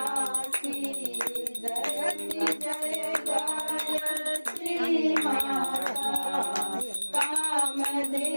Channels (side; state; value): both; inverted; correlation -1.00